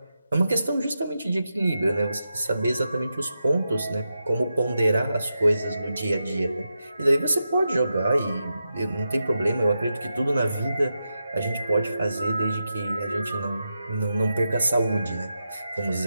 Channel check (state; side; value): inverted; both; correlation -0.88